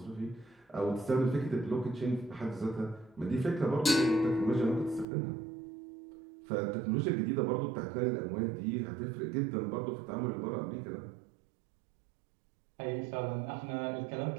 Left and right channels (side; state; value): left; drops out; at 5.1 s